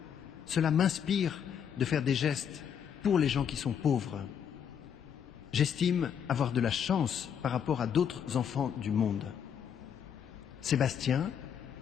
Cela m'inspire de faire des gestes pour les gens qui sont pauvres. J'estime avoir de la chance par rapport à d'autres enfants du monde. Sébastien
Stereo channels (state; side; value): quieter; right; 8.1 dB